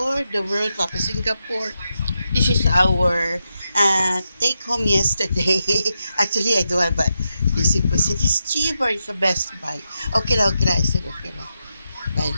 the World Cup of Singapore. This is our take home yesterday. Actually, I do have, but this was it is cheaper. It's the best buy. Okay lang. I said okay lang. Buy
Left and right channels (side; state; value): both; inverted; correlation -0.86